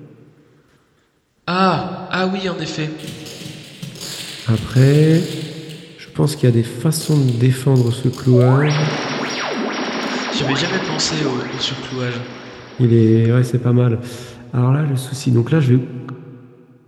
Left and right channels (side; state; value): both; identical; correlation 1.00